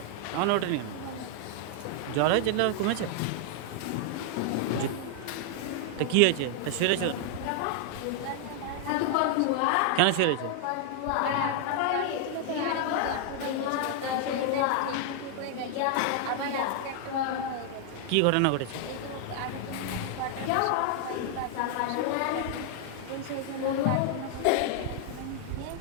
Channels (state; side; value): different; both; correlation 0.00